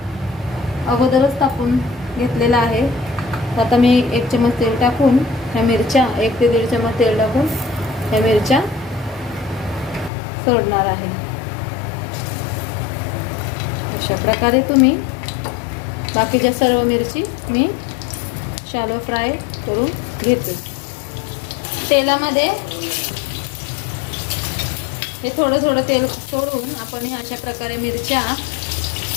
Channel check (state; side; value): drops out; right; at 10.1 s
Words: अगोदरच टाकून घेतलेला आहे. आता मी 1 चम्मच तेल टाकून ह्या मिरच्या 1 ते 1.5 चम्मच तेल टाकून ह्या मिरच्या सोडणार आहे. अशा प्रकारे तुम्ही बाकीच्या सर्व मिरची मी शॅलो फ्राय करून घेते. तेलामध्ये हे थोडं तेल सोडून आपण अशा प्रकारे मिरच्या